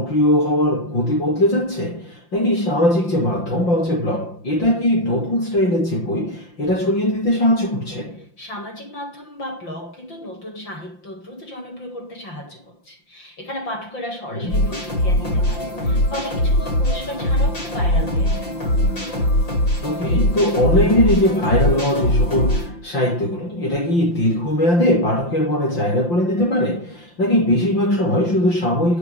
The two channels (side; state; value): right; late; 5.8 ms